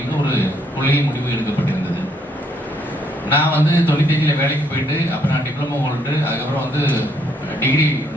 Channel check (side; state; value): both; normal; correlation 0.70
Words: ஒரு கொள்கை முடிவு எடுக்கப்பட்டிருந்தது. நான் வந்து 95 வேலைக்கு போயிட்டு அப்புறம் நான் டிப்ளமோ ஹோல்டு, அதுக்கப்புறம் வந்து டிகிரி